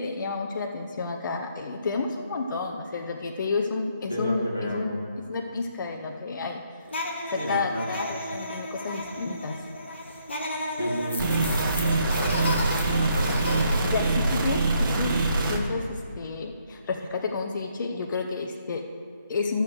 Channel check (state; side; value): inverted; both; correlation -0.71